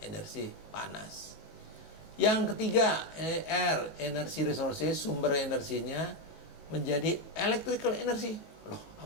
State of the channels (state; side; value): late; right; 19 ms